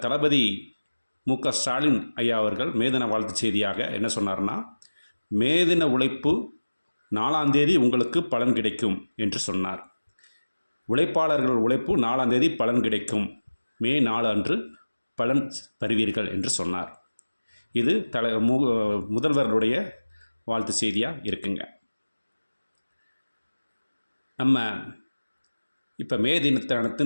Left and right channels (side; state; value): both; inverted; correlation -1.00